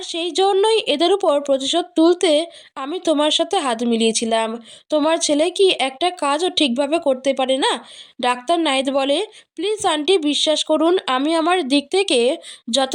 সেই জন্যই এদের উপর প্রতিশোধ তুলতে আমি তোমার সাথে হাত মিলিয়েছিলাম। তোমার ছেলে কি একটা কাজও ঠিকভাবে করতে পারে না? ডাক্তার নাহিদ বলে, প্লিজ আন্টি বিশ্বাস করুন, আমি আমার দিক থেকে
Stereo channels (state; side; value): identical; both; correlation 1.00